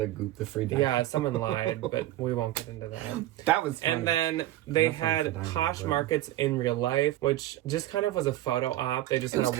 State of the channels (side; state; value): left; quieter; 14.9 dB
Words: gooped the free Dymo. Yeah, someone lied, but we won't get into that. That was funny. And then they had Posh Markets in real life, which just kind of was a photo op. They just had